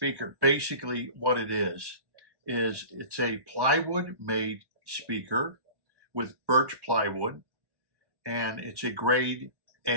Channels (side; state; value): left; late; 1.1 ms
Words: basically what it is it's a plywood made speaker with birch plywood, and it's a grade